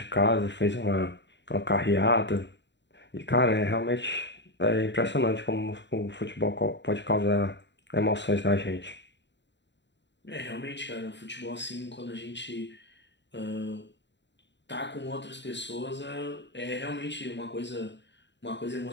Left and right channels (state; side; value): late; right; 0.52 ms